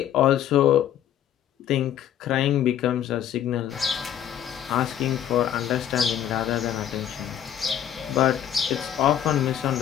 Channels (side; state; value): right; quieter; 10.3 dB